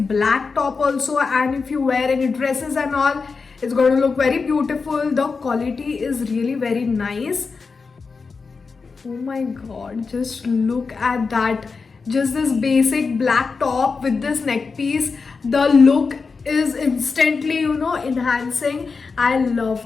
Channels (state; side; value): quieter; right; 4.7 dB